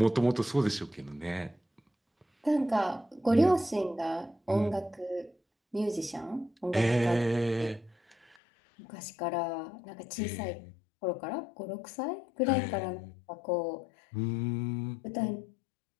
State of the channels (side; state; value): right; drops out; at 8.4 s